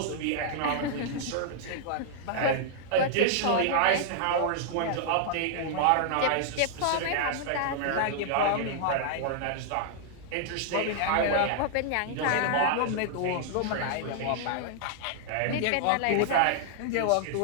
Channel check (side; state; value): both; different; correlation -0.01